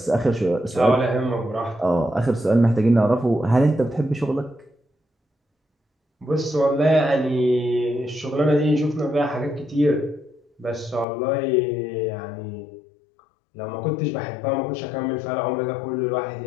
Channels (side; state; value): right; drops out; at 11.1 s